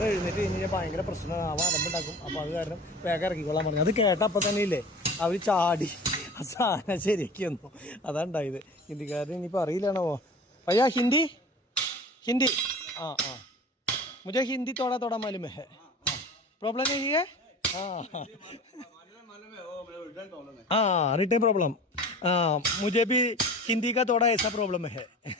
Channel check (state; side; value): normal; both; correlation 0.40